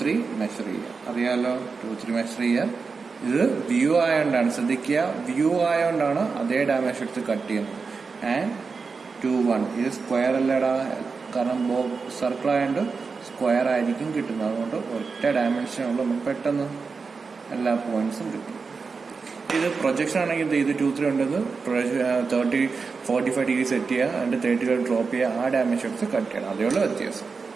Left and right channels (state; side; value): quieter; left; 4.8 dB